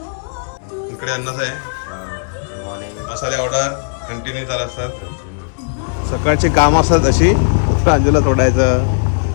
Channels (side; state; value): right; silent; digital silence